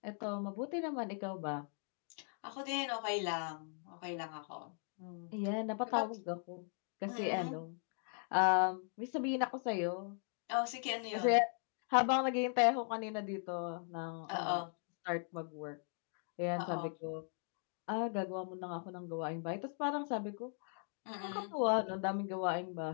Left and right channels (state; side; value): silent; right; 52 dB below the other